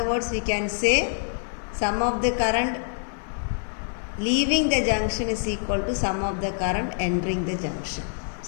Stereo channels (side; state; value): right; silent; digital silence